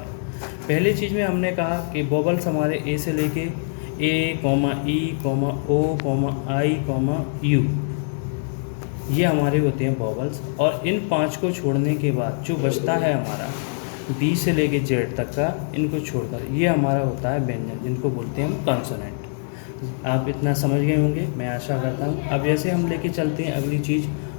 पहली चीज़ में हमने कहा कि वोवल्स हमारे ए से लेके ए, ई, ओ, आई, यू, ये हमारे होते हैं वोवल्स। और इन 5 को छोड़ने के बाद जो बचता है हमारा बी से लेके जेड तक का, इनको छोड़कर ये हमारा होता है व्यंजन, जिनको बोलते हैं हम कॉन्सोनेंट। आप इतना समझ गए होंगे, मैं आशा करता हूँ। अब ऐसे हम लेके चलते हैं अगली चीज़,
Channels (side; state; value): right; silent; digital silence